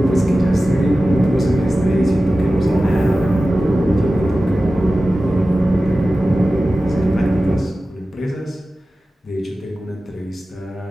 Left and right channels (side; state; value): both; normal; correlation 0.95